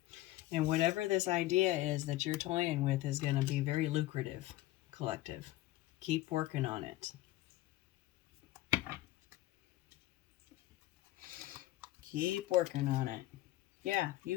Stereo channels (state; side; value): quieter; right; 16.6 dB